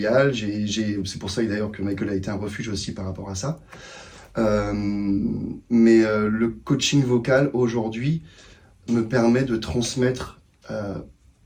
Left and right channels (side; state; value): both; identical; correlation 1.00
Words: C'est pour ça d'ailleurs que Michael a été un refuge aussi par rapport à ça. Mais le coaching vocal aujourd'hui me permet de transmettre